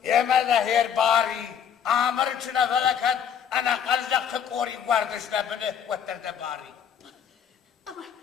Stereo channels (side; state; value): right; quieter; 8.2 dB